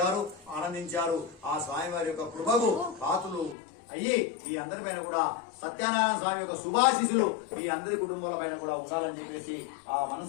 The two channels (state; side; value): drops out; right; at 3.6 s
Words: ఆనందించారు. ఆ స్వామివారి యొక్క కృపకు పాత్రలు అయ్యి మీ అందరిపైన కూడా సత్యనారాయణ స్వామి యొక్క శుభాశీసులు మీ అందరి కుటుంబాల పైన కూడా ఉండాలని చెప్పేసి ఆ